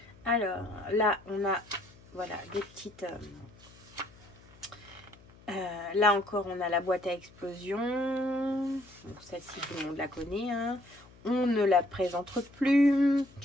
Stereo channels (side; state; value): left; noise; hum, 24 dB below the sound